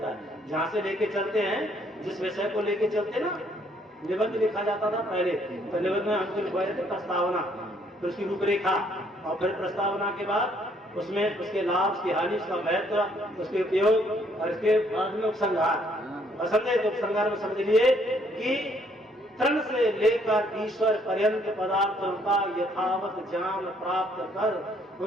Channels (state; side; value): normal; both; correlation 0.66